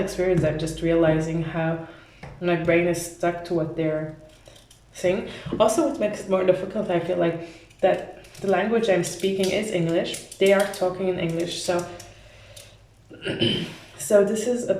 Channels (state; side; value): identical; both; correlation 1.00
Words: I'm just realizing how my brain is stuck to what they're saying. Also, what makes it more difficult, I feel like, that the language I'm speaking is English. They are talking in English, so so this is a